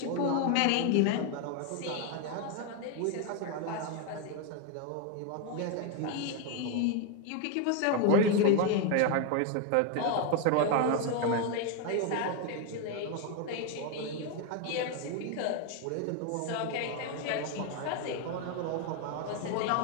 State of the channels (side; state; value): both; different; correlation 0.01